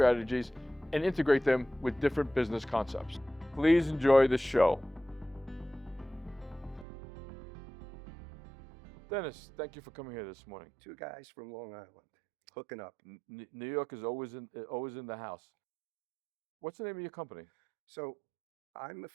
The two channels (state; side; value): drops out; left; at 6.9 s